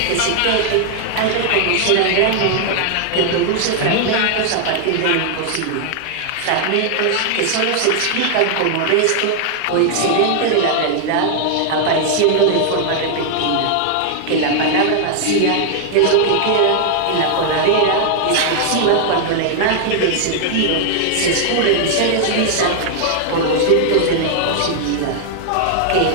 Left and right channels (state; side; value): different; both; correlation 0.00